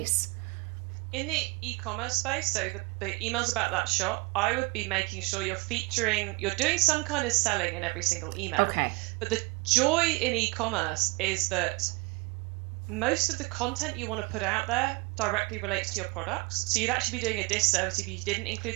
in the e-commerce space, so the emails about that shop, I would be making sure you're doing some kind of selling in every single email. Okay. But the joy in e-commerce is that most of the content you want to put out there directly relates to your products. So you'd actually be doing a disservice if you didn't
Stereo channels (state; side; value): quieter; left; 27.0 dB